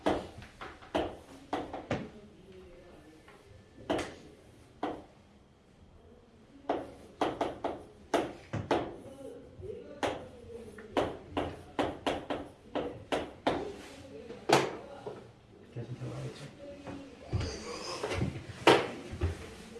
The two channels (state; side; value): identical; both; correlation 1.00